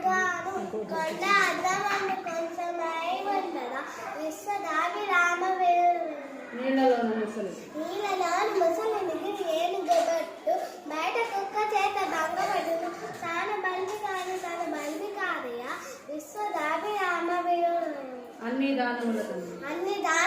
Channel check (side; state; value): both; identical; correlation 1.00